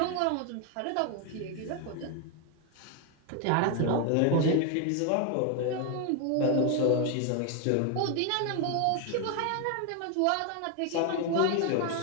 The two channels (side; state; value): both; different; correlation 0.01